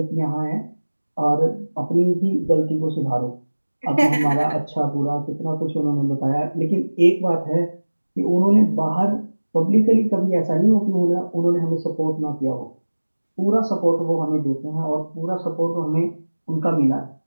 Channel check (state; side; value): inverted; both; correlation -1.00